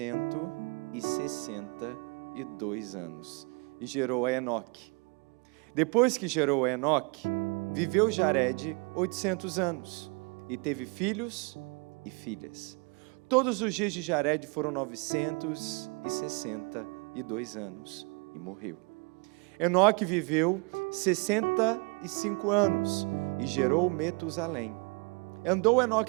anos, e gerou a Enoque. Depois que gerou a Enoque, viveu Jared 800 anos, e teve filhos e filhas. Todos os dias de Jared foram 962 anos, e morreu. Enoque viveu 65 anos, e gerou Metusalém. Andou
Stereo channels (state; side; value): quieter; left; 32.5 dB